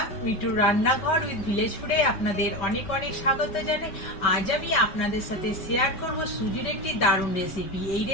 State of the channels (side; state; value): right; late; 5.1 ms